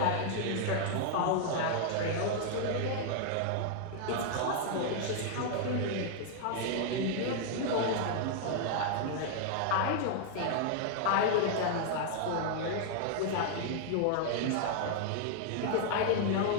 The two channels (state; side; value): different; both; correlation 0.00